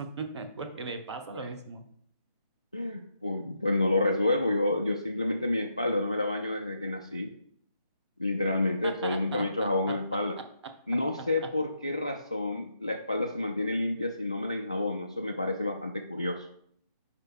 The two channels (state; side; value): inverted; both; correlation -0.80